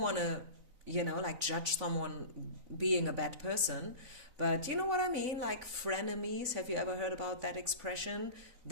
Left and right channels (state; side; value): late; left; 4.0 ms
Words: to like judge someone being a bad person. But you know what I mean? Like frenemies. Have you ever heard about that expression?